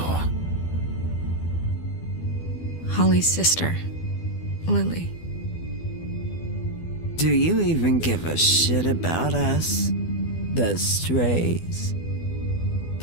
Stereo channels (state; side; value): late; right; 12 ms